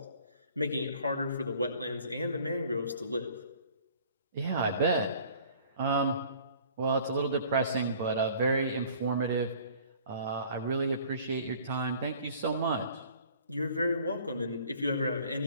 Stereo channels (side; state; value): both; inverted; correlation -0.52